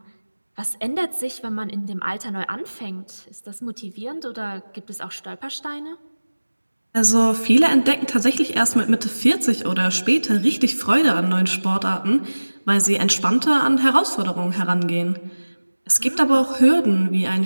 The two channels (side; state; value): both; inverted; correlation -1.00